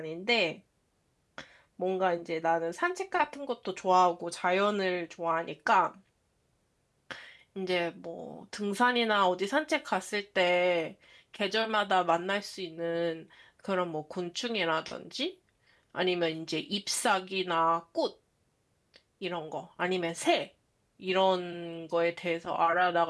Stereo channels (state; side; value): identical; both; correlation 1.00